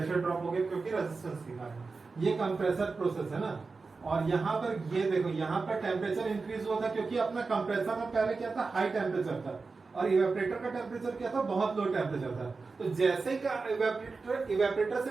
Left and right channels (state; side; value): quieter; left; 4.2 dB